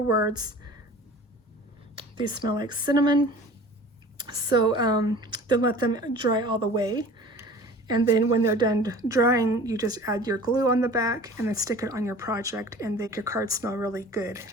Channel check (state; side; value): normal; both; correlation 0.43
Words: words. These smell like cinnamon. So then let them dry all the way. And then when they're done drying, you just add your glue on the back and then stick it on your project and make your card smell really good.